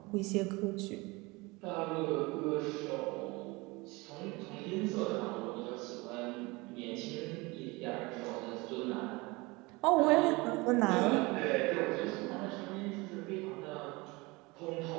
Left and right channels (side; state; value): left; quieter; 24.2 dB